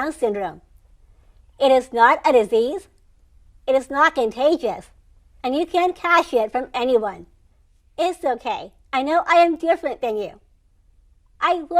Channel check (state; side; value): identical; both; correlation 1.00